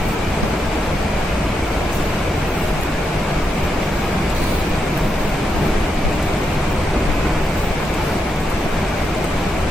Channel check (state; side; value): normal; both; correlation 0.83